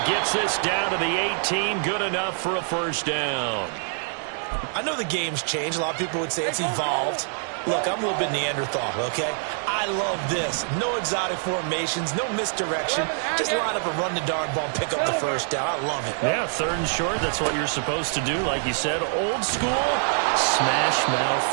gets this down to the 18. Good enough for a 1st down. I know the game's changed. A lot of people would say it's evolved. Look, I'm a little bit Neanderthal, okay? I love this. No exotic formations, no misdirection. Just line up and run the darn ball and pick up the 1st down. I love it. Yeah, 3rd and short, that's what you're supposed to do. Like you said, old school, smash mouth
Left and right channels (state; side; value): silent; left; 62 dB below the other